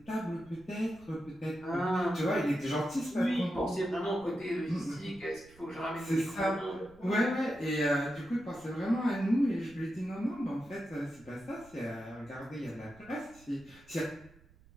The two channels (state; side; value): noise; right; rumble, 25 dB below the sound